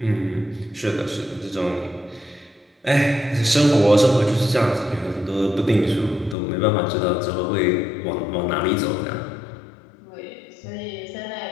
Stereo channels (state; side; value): drops out; right; at 6.4 s